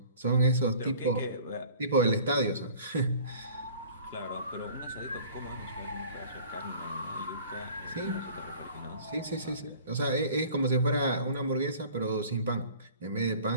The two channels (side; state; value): both; inverted; correlation -0.47